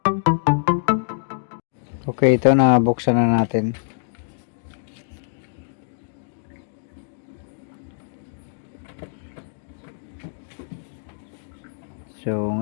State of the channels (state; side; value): silent; right; digital silence